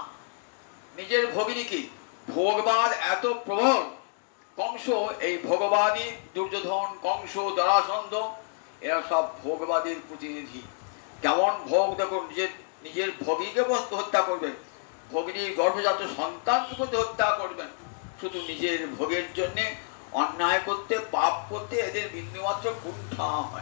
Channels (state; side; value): silent; right; 59 dB below the other